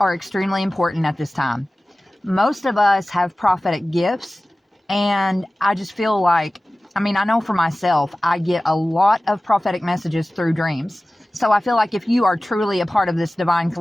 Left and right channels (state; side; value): normal; both; correlation 0.97